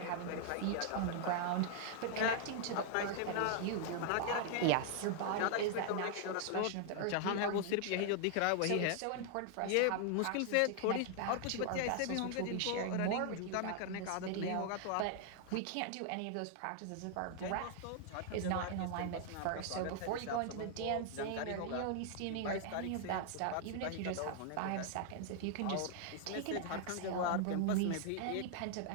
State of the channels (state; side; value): different; both; correlation 0.00